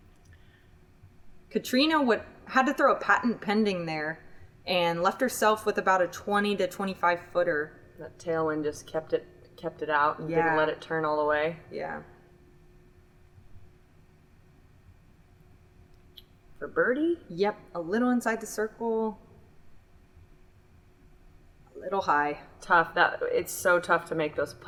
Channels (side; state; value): both; identical; correlation 1.00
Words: Catrina had to throw a patent pending there and left herself with about a 20 to 25 footer. That tailwind just kept it out and didn't let it turn all the way. Yeah. For birdie? Yep, a little inside the circle. A little high. Tough. It's so tough to make those